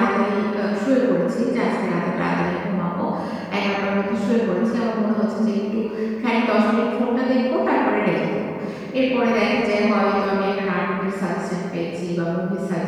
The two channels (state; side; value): identical; both; correlation 1.00